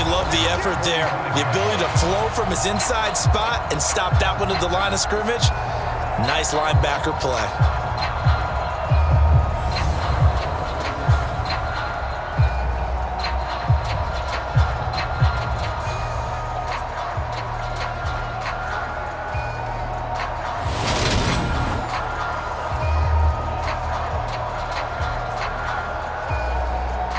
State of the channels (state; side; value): identical; both; correlation 1.00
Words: love the effort there. The ability to flow from his inside spot and stop that one at the line of scrimmage. Nice linebacker play.